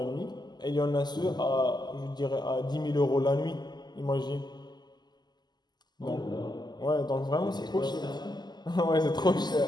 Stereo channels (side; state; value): right; late; 0.21 ms